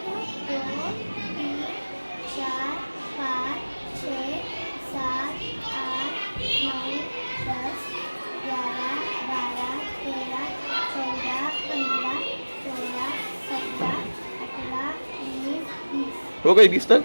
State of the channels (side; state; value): both; inverted; correlation -1.00